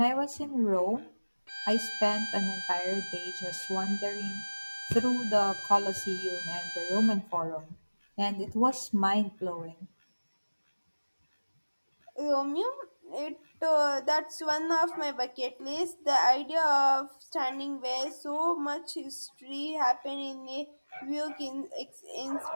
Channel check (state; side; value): inverted; both; correlation -1.00